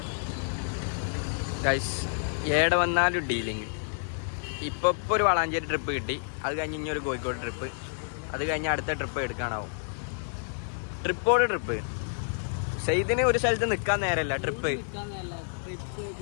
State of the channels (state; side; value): silent; right; digital silence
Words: ഗൈസ് ഏടെ വന്നാലും ഡീലിങ്. ഇപ്പോൾ ഒരു വളാഞ്ചേരി ട്രിപ്പ് കിട്ടി, അത് കഴിഞ്ഞ് ഇനി ഒരു കോഴിക്കോട് ട്രിപ്പ്, അത് കഴിഞ്ഞ് അടുത്ത ട്രിപ്പ് എടുക്കാനാവും. ട്രിപ്പോട് ട്രിപ്പ്. സെയ്ദിന് ഒരു സ്ഥലത്ത് നിൽക്കാൻ നേരമല്ല, ട്രിപ്പ്.